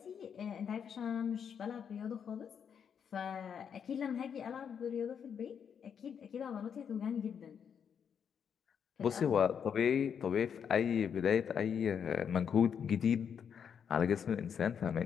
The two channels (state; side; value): quieter; right; 7.5 dB